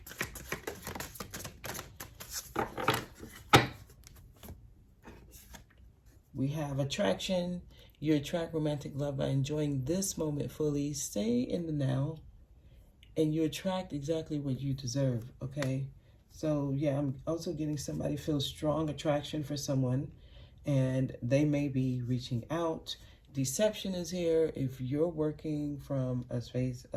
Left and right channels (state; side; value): identical; both; correlation 1.00